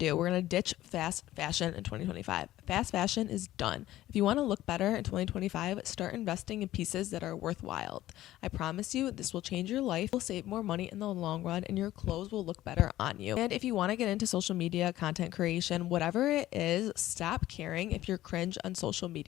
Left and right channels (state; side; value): quieter; right; 14.8 dB